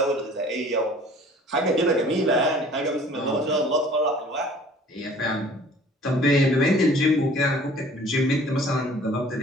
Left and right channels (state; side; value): normal; both; correlation 0.50